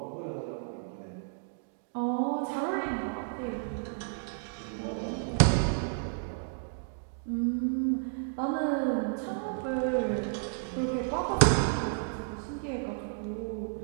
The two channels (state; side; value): silent; left; digital silence